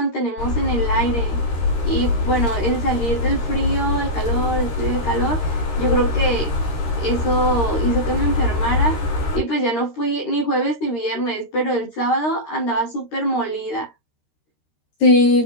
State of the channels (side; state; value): right; late; 13 ms